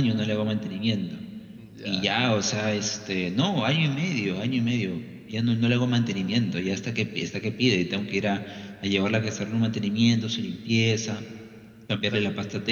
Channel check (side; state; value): both; identical; correlation 1.00